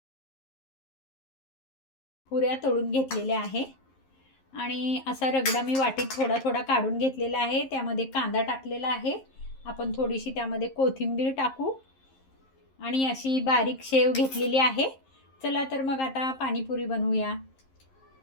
पुऱ्या तळून घेतलेल्या आहे आणि असा रगडा मी वाटीत थोडा थोडा काढून घेतलेला आहे। त्यामध्ये कांदा टाकलेला आहे। आपण थोडीशी त्यामध्ये कोथिंबीर टाकू आणि अशी बारीक शेव घेतलेली आहे। चला तर मग आता पाणीपुरी बनवूया।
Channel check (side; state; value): right; late; 11 ms